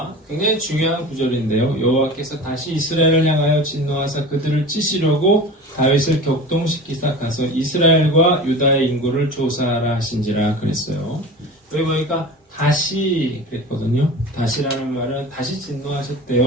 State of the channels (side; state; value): both; normal; correlation 0.34